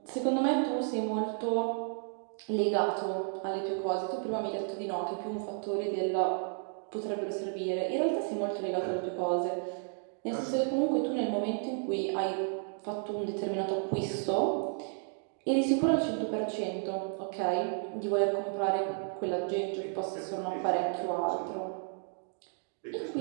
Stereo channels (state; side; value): silent; left; 56 dB below the other